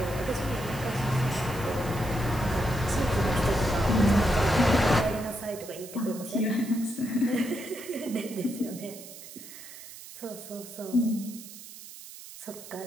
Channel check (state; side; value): noise; right; hiss, 15 dB below the sound